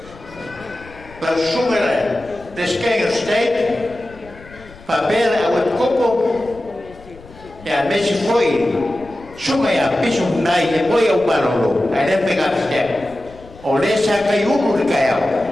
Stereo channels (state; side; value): noise; left; rumble, 21 dB below the sound